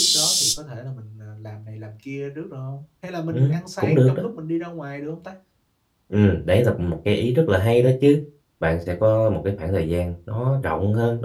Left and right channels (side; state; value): both; identical; correlation 1.00